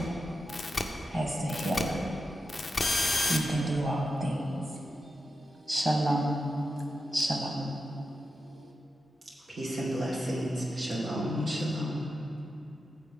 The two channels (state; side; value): normal; both; correlation 0.88